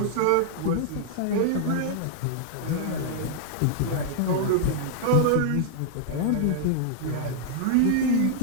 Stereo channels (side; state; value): both; different; correlation -0.01